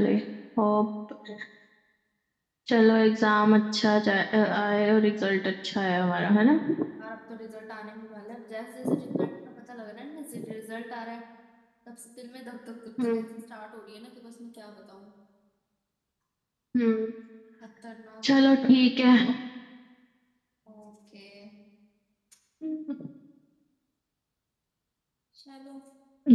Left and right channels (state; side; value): identical; both; correlation 1.00